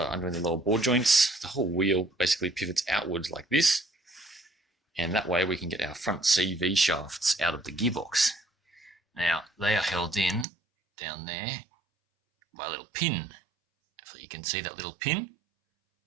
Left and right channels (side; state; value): left; drops out; at 10.5 s